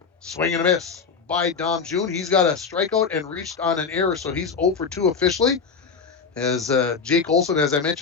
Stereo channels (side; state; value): right; quieter; 5.5 dB